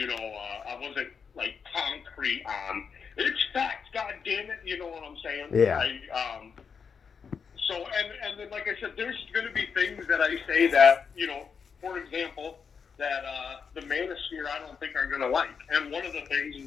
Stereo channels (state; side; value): quieter; right; 6.2 dB